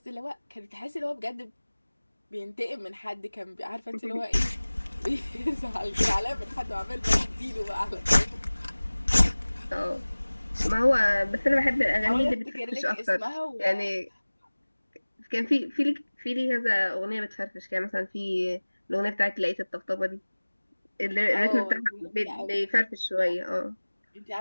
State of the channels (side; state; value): both; inverted; correlation -1.00